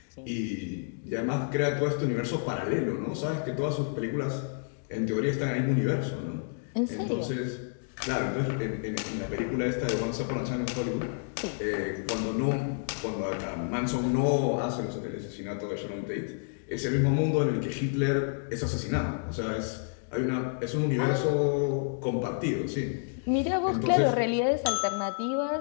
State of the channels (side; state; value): right; silent; digital silence